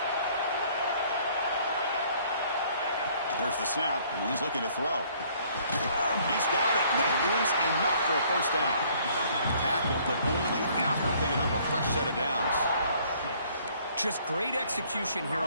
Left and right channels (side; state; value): both; inverted; correlation -0.60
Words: Here's the snap, and he's looking to throw. He's got it. That is enough for a 1st down. Tackle, but only after picking up a fresh set of downs. Just great execution here